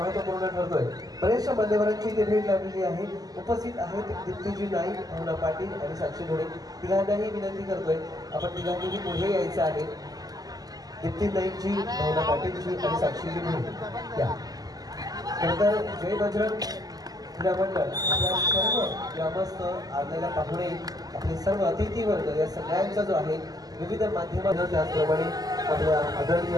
ठरतोय। बरेचशा मान्यवरांची इथे भेट लाभलेली आहे। उपस्थित आहेत दीप्तीजी नाईक, भावना पाटील आणि साक्षी ढोळे। तिघांनाही विनंती करतोय आपण तिघांनीही पुढे यायचं आहे। दीप्ती नाईकजी, भावना पाटीलजी आणि साक्षीजी ढोळे या। नंतर जय बजरंग क्रीडा मंडळ आपल्या सर्व ग्रामस्थ आलेल्या पाहुणे आपले सर्व अतिथी वर्ग या सगळ्यांचा जो आहे विविध माध्यमांना त्याचप्रमाणे आपल्या आदरणीय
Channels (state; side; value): late; left; 0.18 ms